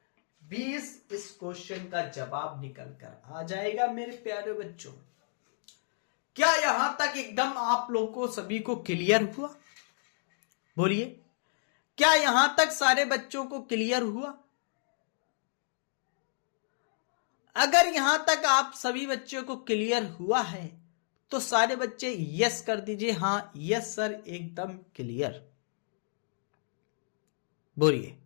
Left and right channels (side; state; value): right; silent; digital silence